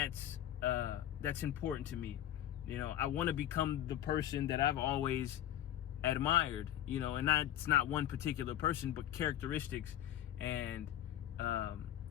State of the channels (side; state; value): right; quieter; 12.0 dB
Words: important to me. You know, I want to become the person that I've always admired, you know, and it's not one particular person, but characteristics and